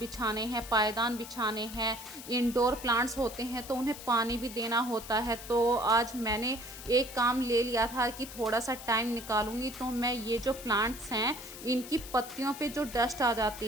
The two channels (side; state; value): left; noise; hiss, 13 dB below the sound